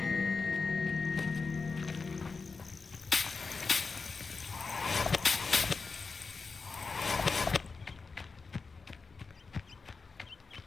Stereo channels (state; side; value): quieter; right; 4.5 dB